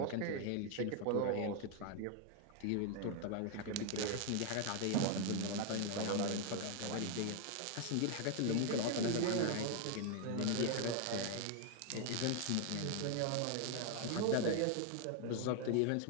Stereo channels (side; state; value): both; different; correlation 0.01